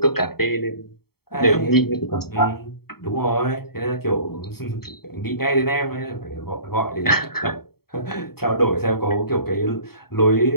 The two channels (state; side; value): late; right; 0.95 ms